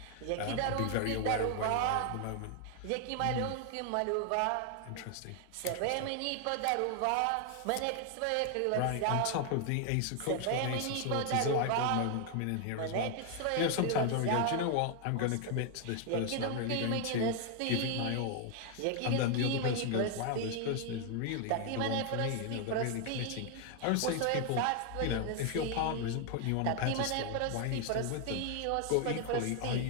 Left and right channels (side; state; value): both; different; correlation 0.00